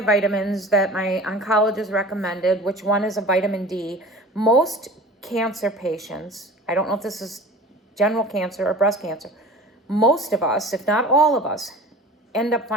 that my oncologist recommended, which one is a vitamin D. Most cancer patients, I don't know if this is general cancer or breast cancer, most of us, if not all of us, end up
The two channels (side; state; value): both; normal; correlation 0.40